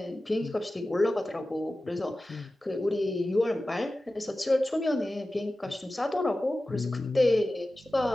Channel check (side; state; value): both; normal; correlation 0.95